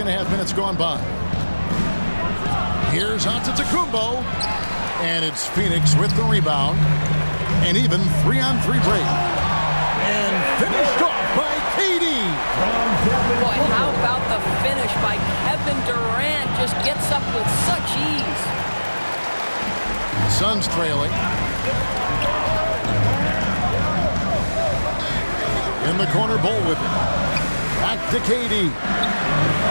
minutes gone by. Here's Antetokounmpo. And it's Phoenix with the rebound. And even 3-on-3 break. And finished off by KD. Boy, how about the finish by Kevin Durant? Just gets up with such ease. Suns trailing. In the corner, Bull with it. Back to KD.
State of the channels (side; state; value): both; inverted; correlation -1.00